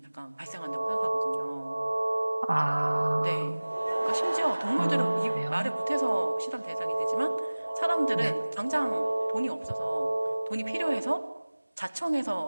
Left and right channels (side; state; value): both; inverted; correlation -1.00